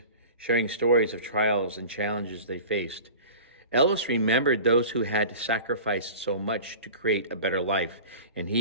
sharing stories of trials and challenges they faced. Ellis remembered those who had sacrificed so much to create a better life, and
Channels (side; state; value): both; inverted; correlation -0.38